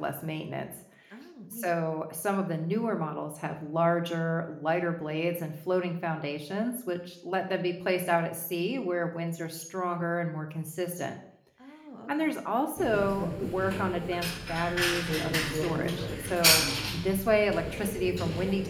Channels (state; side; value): identical; both; correlation 1.00